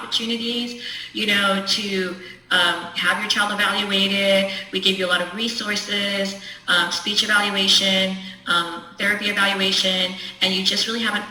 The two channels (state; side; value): identical; both; correlation 1.00